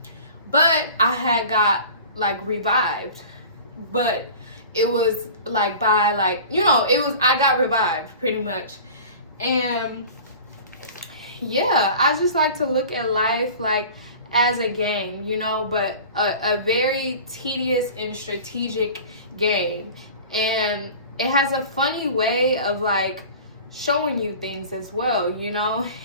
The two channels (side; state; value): both; inverted; correlation -0.40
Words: but I had got like revived, but it was like by like I got revived pretty much. And yeah, I just like to look at life like as a game, but a very tedious and strategic game. And it has a funny way of like showing you things as well,